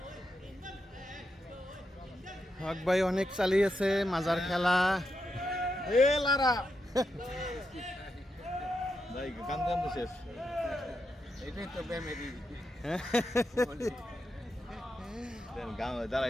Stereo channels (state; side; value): normal; both; correlation 0.85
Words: হক ভাই অনেক চালিয়েছে মাজার খেলা। এ লারা ভাই গান গান তো শেষ। এটাই তো বেমেরি। গান